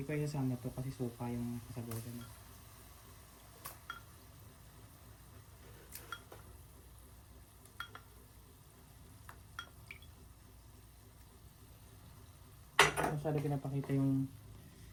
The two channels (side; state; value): both; identical; correlation 1.00